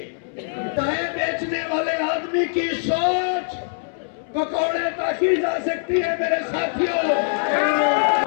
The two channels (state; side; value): silent; right; 64 dB below the other